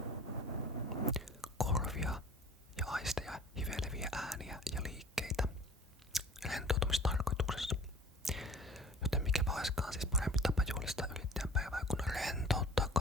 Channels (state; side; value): normal; both; correlation 0.45